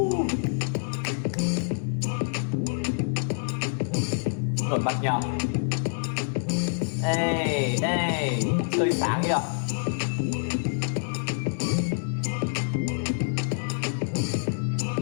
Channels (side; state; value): right; silent; digital silence